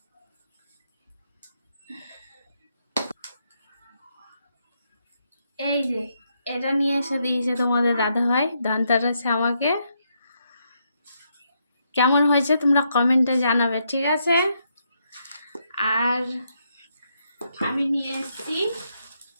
এই যে এটা নিয়ে এসে দিয়েছে তোমাদের দাদা ভাই ধানতেরাসে আমাকে। কেমন হয়েছে তোমরা কমেন্টে জানাবে, ঠিক আছে? আর আমি নিয়ে এসেছি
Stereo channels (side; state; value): both; inverted; correlation -0.78